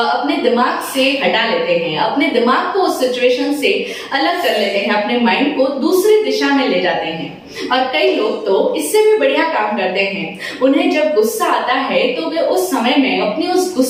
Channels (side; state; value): both; identical; correlation 1.00